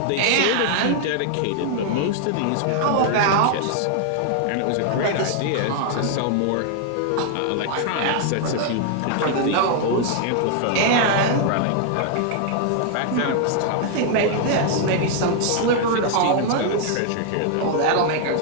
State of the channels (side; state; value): both; different; correlation 0.00